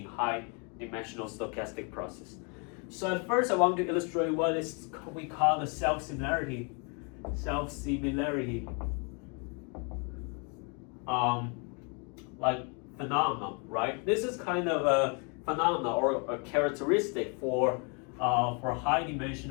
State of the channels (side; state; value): right; quieter; 35.8 dB